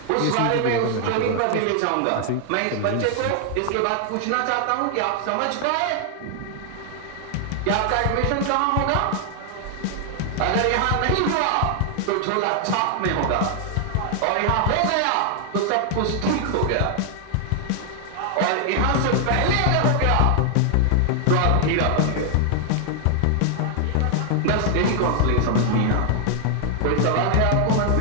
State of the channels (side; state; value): both; different; correlation 0.00